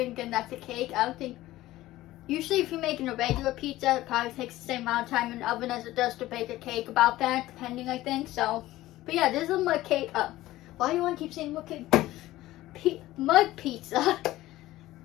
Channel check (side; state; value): right; quieter; 16.3 dB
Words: again, that's a cake. I don't think, usually if you're making a regular pizza, it probably takes the same amount of time in the oven as it does to bake a cake, about that, depending, I think. So, but yeah, this is a mud cake. Why do you want to keep saying mud cake? Mud pizza.